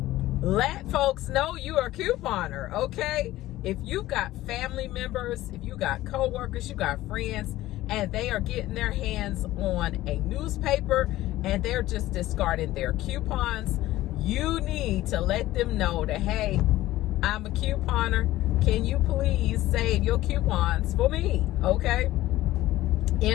let folks know you are a couponer, okay? If you've got family members, if you got coworkers, you got friends, and they are getting their hands on a newspaper and they're just discarding their coupons, you need to let them know that, hey, I'm a couponer. Can you please save your coupons for me, okay?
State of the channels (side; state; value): right; quieter; 15.9 dB